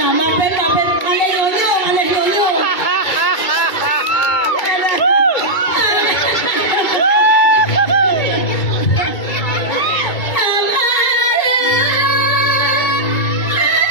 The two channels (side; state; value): right; late; 2.2 ms